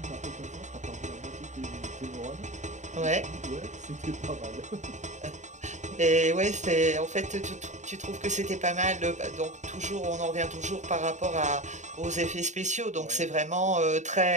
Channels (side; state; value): left; late; 0.34 ms